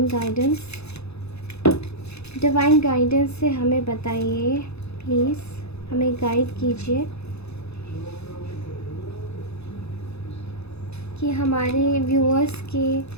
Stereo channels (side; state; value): right; late; 0.79 ms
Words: गाइडेंस, डिवाइन गाइडेंस से हमें बताइए, प्लीज़ हमें गाइड कीजिए कि हमारे व्यूअर्स के,